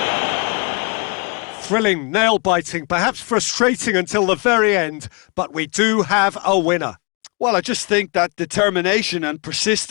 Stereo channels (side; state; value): right; quieter; 33.3 dB